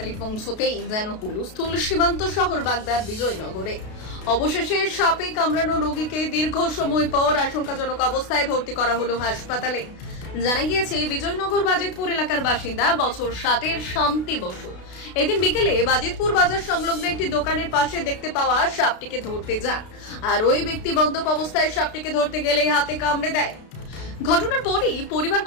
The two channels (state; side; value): late; right; 32 ms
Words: পৌঁছতেই যেন হুলস্থুল সীমান্ত শহর বাগদার বিজয়নগরে। অবশেষে সাপে কামড়ানো রোগীকে দীর্ঘ সময় পর আশঙ্কাজনক অবস্থায় ভর্তি করা হলো হাসপাতালে। জানা গিয়েছে, বিজয়নগর বাজিতপুর এলাকার বাসিন্দা বছর 60-এর শান্তি বসু এদিন বিকেলে বাজিতপুর বাজার সংলগ্ন একটি দোকানের পাশে দেখতে পাওয়া সাপটিকে ধরতে যান, আর ওই ব্যক্তি বন্ধক অবস্থায় সাপটিকে ধরতে গেলেই হাতে কামড়ে দেয়। ঘটনার পরই পরিবার